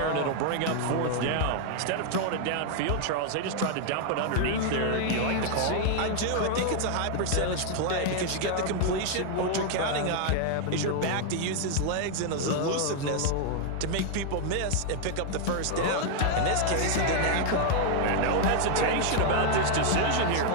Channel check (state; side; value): different; both; correlation 0.00